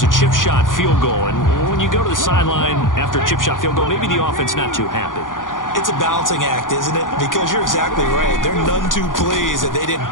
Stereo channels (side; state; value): right; late; 0.89 ms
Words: a chip shot field goal. And when you go to the sideline after a chip shot field goal, maybe the offense not too happy. It's a balancing act, isn't it? Because you're exactly right. They're none too pleased that they didn't